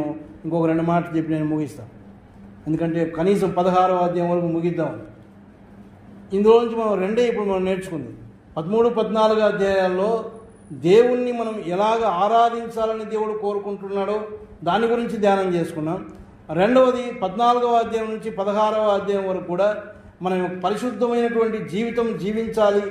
ఇంకొక 2 మాటలు చెప్పి నేను ముగిస్తాను. ఎందుకంటే కనీసం 16వ అధ్యాయం వరకు ముగిద్దాం. ఇందులో నుంచి మనం ఇప్పుడు మనం నేర్చుకుంది 13, 14 అధ్యాయాల్లో దేవుణ్ణి మనం ఎలాగ ఆరాధించాలని దేవుడు కోరుకుంటున్నాడో దాని గురించి ధ్యానం చేసుకున్నాం. రెండవది 14వ అధ్యాయం నుంచి 16వ అధ్యాయం వరకు కూడా మనం పరిశుద్ధమైనటువంటి జీవితం జీవించాలి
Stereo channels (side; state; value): both; identical; correlation 1.00